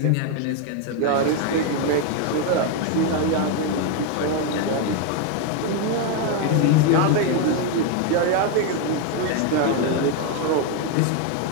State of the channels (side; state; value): both; different; correlation 0.01